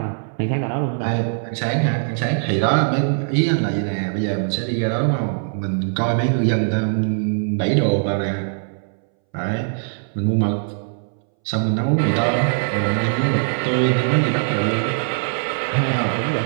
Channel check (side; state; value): left; silent; 63 dB below the other